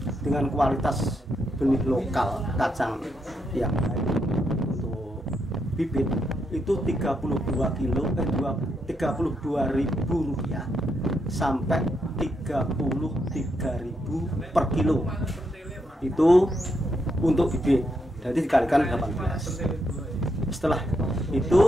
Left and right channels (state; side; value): normal; both; correlation 0.80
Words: dengan kualitas benih lokal kacang yang baik untuk bibit itu 32.000 rupiah sampai 33.000 per kilo. Itu untuk bibit, jadi dikalikan 18. Setelah